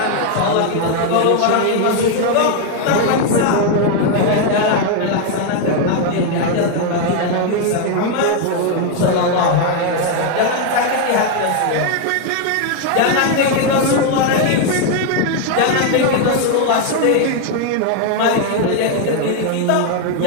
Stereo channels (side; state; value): both; different; correlation 0.01